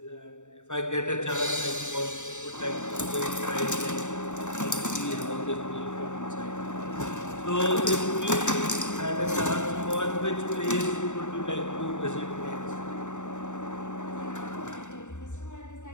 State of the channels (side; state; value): right; late; 0.84 ms